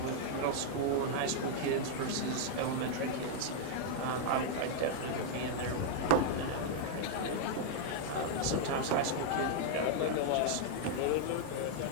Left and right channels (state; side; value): different; both; correlation -0.01